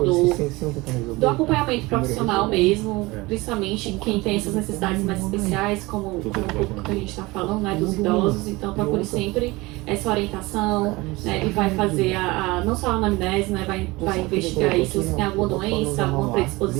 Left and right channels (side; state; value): left; quieter; 22.2 dB